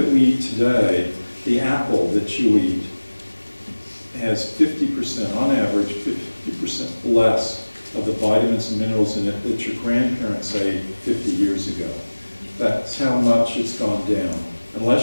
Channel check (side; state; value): both; inverted; correlation -1.00